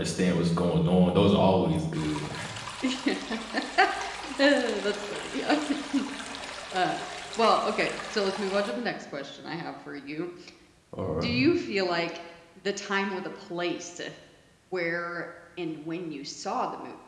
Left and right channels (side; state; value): both; identical; correlation 1.00